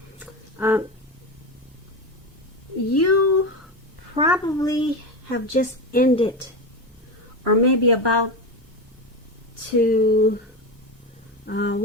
you probably have just ended, or maybe about to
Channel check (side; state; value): both; normal; correlation 0.18